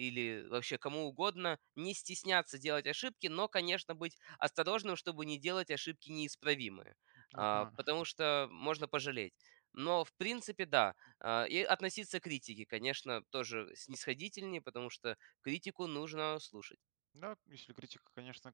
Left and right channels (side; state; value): left; silent; digital silence